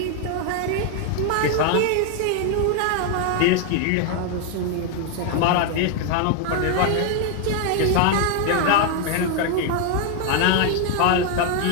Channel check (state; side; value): different; both; correlation 0.00